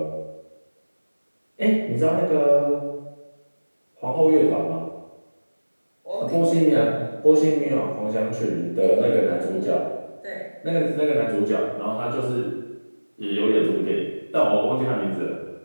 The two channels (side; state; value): both; inverted; correlation -1.00